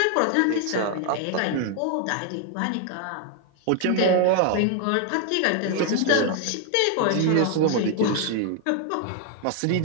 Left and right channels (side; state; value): both; different; correlation 0.00